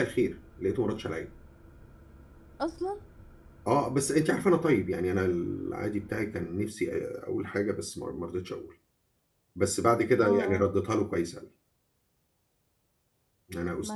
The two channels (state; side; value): identical; both; correlation 1.00